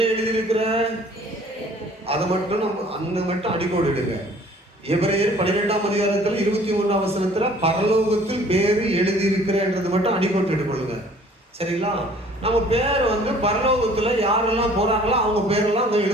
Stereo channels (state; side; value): normal; both; correlation 0.53